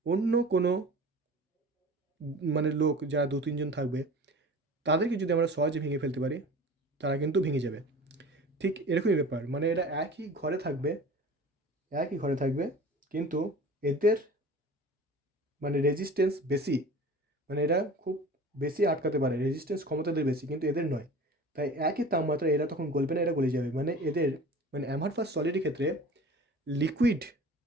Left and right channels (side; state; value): both; normal; correlation 0.40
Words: অন্য কোনো মানে লোক, যারা 2-3 জন থাকবে, তাদেরকে যদি আমরা সহজে ভেঙে ফেলতে পারি, তারা কিন্তু ভেঙে যাবে। ঠিক এরকমই ব্যাপার, মানে এরা একই ঘরে থাকবে, কিন্তু এদের মানে রেজিস্ট্যান্স বেশি, মানে এরা খুব বেশি আটকাতে পারে, রেজিস্ট্যান্স ক্ষমতা এদের বেশি, কিন্তু এদের নয়। তাই একই তাপমাত্রা এরা তখন গলবে না, এরা গলে যাবে। মানে এদের মানে অ্যামারফাস সলিডের ক্ষেত্রে লিকুইড